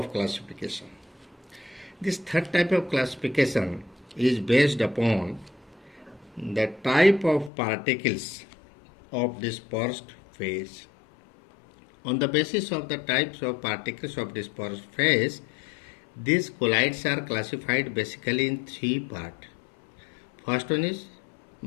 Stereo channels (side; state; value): right; drops out; at 7.5 s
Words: classification. This third type of classification is based upon the type of particles of dispersed phase. On the basis of the types of particles of dispersed phase, these colloids are classified basically in three parts. First one is